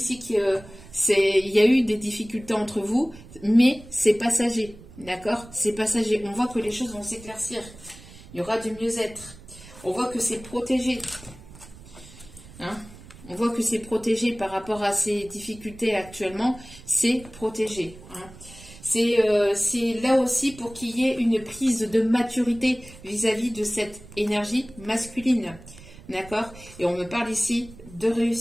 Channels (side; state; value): right; noise; rumble, 19 dB below the sound